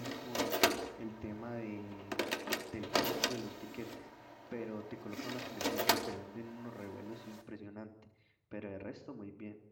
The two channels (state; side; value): identical; both; correlation 1.00